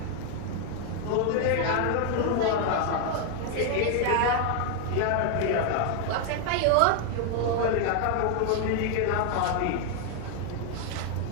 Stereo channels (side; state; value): both; different; correlation 0.01